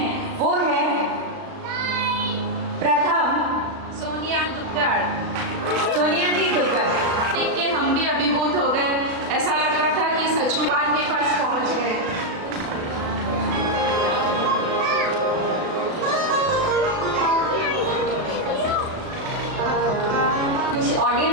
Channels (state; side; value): late; left; 36 ms